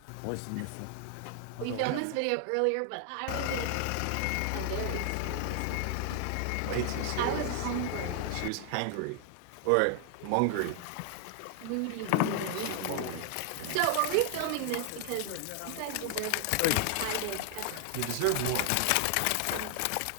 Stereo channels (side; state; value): both; different; correlation 0.00